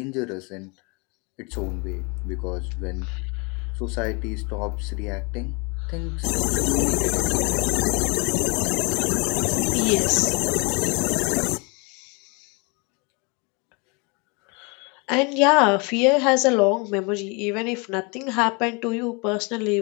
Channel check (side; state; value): right; quieter; 30.6 dB